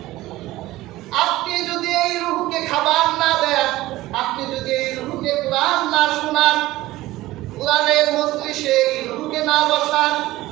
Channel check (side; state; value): left; quieter; 17.2 dB